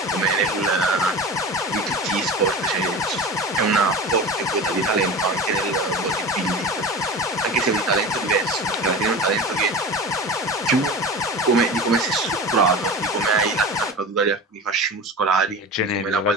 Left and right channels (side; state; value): both; normal; correlation 0.31